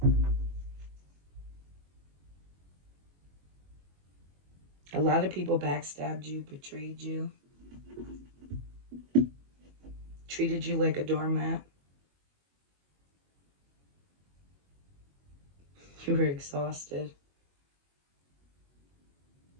A lot of people backstabbed you, betrayed you, treated you like a doormat. You were exhausted.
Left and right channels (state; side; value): late; left; 21 ms